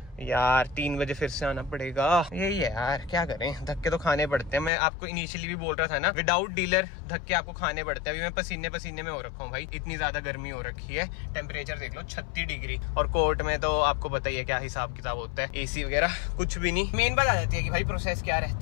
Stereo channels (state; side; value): drops out; right; at 4.7 s